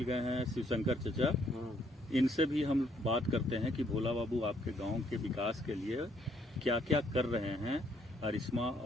गए हैं शिवशंकर चचा। हाँ। इनसे भी हम बात करते हैं कि भोला बाबू आपके गांव के विकास के लिए क्या क्या कर रहे हैं। अरिश्मा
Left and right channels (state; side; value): normal; both; correlation 0.68